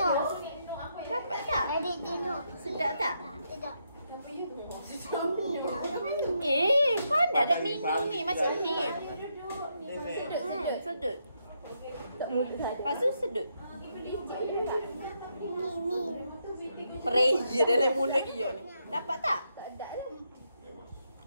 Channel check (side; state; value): both; inverted; correlation -0.80